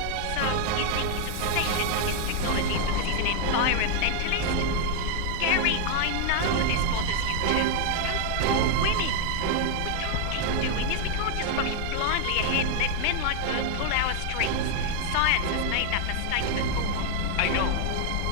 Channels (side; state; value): both; different; correlation 0.00